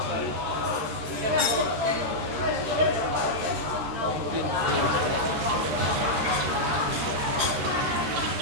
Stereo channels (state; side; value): late; left; 13 ms